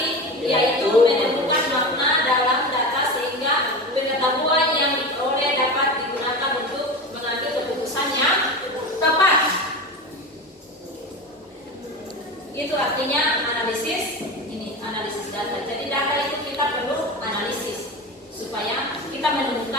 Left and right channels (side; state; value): both; normal; correlation 0.26